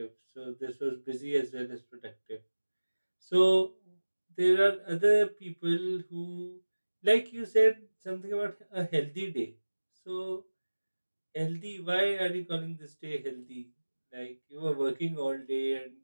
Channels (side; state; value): both; inverted; correlation -1.00